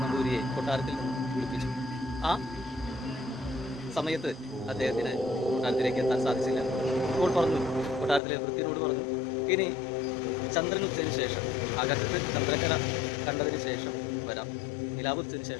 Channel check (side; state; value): right; drops out; at 8.2 s